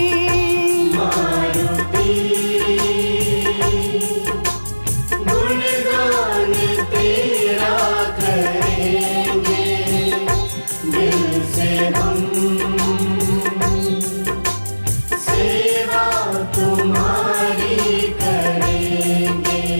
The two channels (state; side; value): inverted; both; correlation -1.00